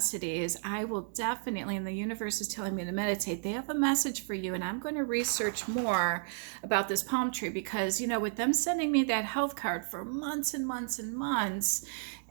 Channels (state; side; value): silent; left; digital silence